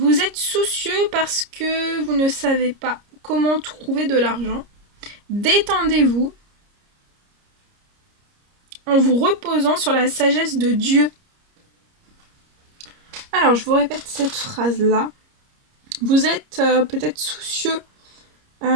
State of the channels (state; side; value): late; left; 30 ms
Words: êtes soucieux parce que vous ne savez pas comment trouver de l'argent. Détendez-vous en vous reposant sur la sagesse de Dieu. Alors, je vous répète cette phrase-là. Vous êtes peut-être soucieux